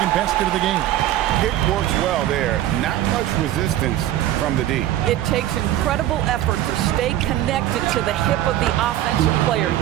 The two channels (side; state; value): left; quieter; 13.2 dB